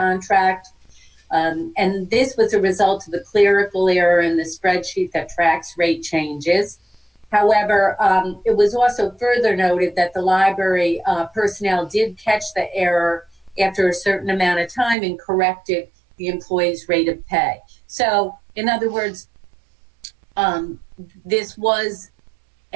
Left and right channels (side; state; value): left; drops out; at 15.0 s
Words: And this was a result of the clerical error in the spreadsheet that tracks rate changes. However, it was also further noted that the library personnel did catch the error after a certain amount of time and corrected the employee's rate of pay. So, in other words, this was